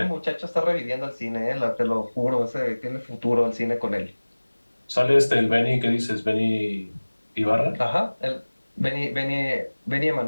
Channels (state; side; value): inverted; both; correlation -1.00